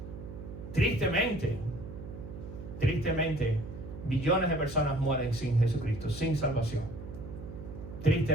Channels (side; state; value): right; noise; hum, 11 dB below the sound